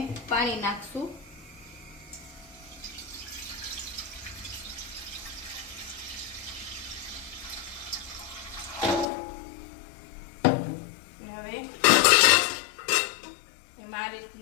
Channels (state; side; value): drops out; right; at 9.1 s